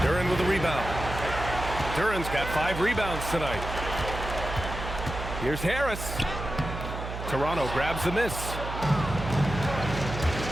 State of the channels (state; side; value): noise; right; hum, 7 dB below the sound